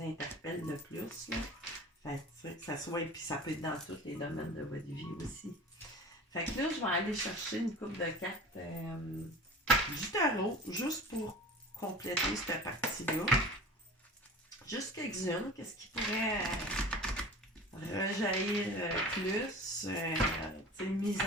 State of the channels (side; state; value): both; normal; correlation 0.38